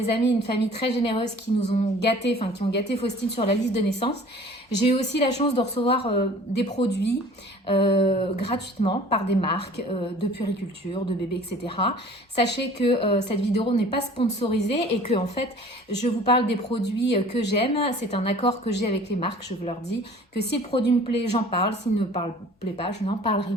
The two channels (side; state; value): both; normal; correlation 0.48